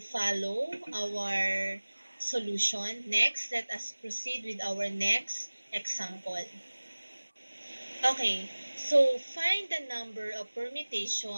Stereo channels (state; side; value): inverted; both; correlation -1.00